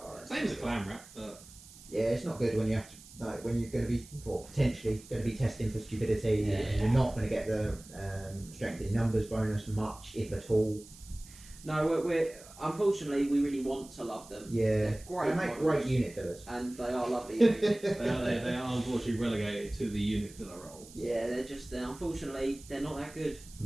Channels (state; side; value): noise; right; hiss, 20 dB below the sound